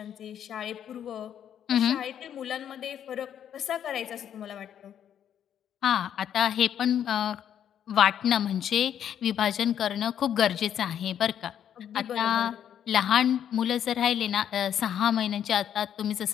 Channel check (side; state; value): right; quieter; 9.5 dB